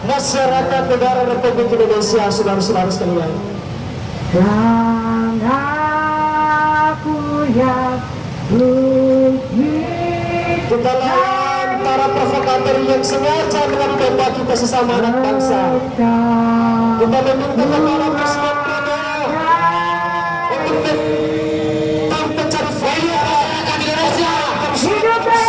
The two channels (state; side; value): identical; both; correlation 1.00